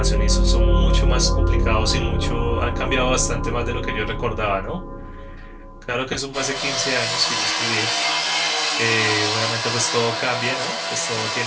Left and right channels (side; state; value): both; identical; correlation 1.00